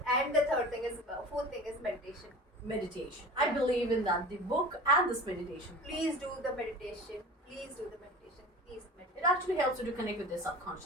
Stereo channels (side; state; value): both; normal; correlation 0.37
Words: And the fourth thing is meditation. Meditation. I believe in that. The book and this meditation. Please do the meditation. Please do the meditation. Please meditate. It actually helps you to connect with your